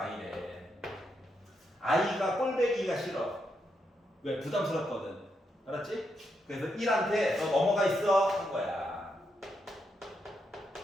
i가 꼴배기가 싫어. 왜? 부담스럽거든. 알았지? 그래서 1한테 너 넘어가 있어 한 거야.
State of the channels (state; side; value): normal; both; correlation 0.81